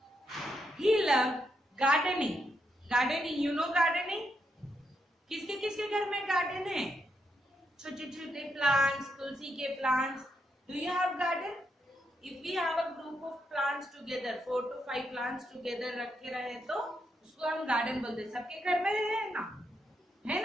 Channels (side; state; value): both; normal; correlation 0.80